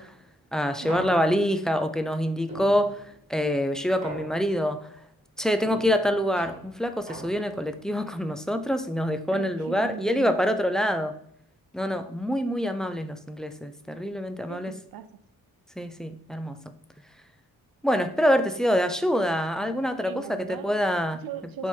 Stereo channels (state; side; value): normal; both; correlation 0.82